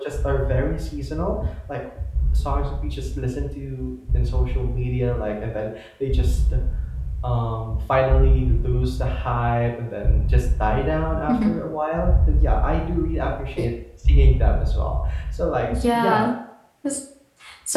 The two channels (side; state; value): both; identical; correlation 1.00